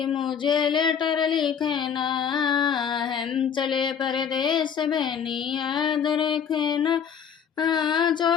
मुझे लेटर लिखना। हम चले परदेश, बहनी याद रखना।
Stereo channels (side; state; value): right; quieter; 7.6 dB